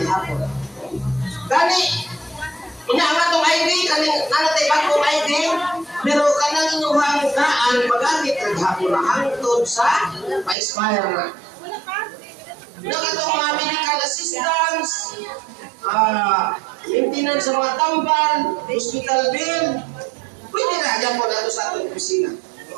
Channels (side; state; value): left; drops out; at 10.6 s